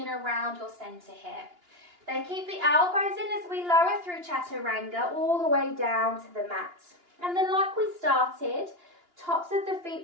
around your center here. Then keep the elbows in as we lower through Chaturanga all the way down to the mat. And then like we started, tops of the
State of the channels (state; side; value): late; left; 2.9 ms